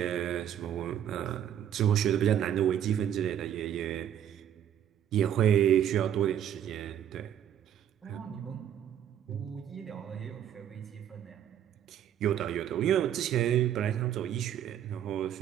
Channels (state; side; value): quieter; left; 10.1 dB